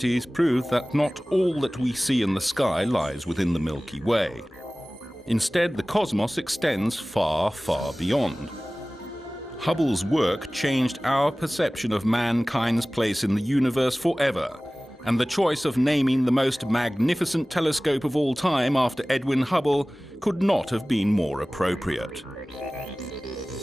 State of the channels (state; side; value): normal; both; correlation 0.98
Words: proved that not all that we see in the sky lies within the Milky Way. Instead, the cosmos extends far, far beyond. Hubble's work changed our perception of mankind's place in the universe forever, and the choice of naming the most magnificent telescope of all time after Edwin Hubble could not have been more appropriate.